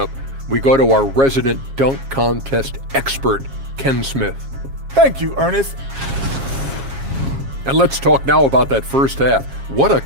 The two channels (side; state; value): left; late; 7.4 ms